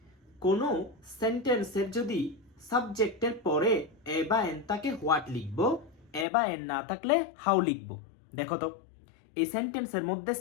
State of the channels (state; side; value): drops out; right; at 6.2 s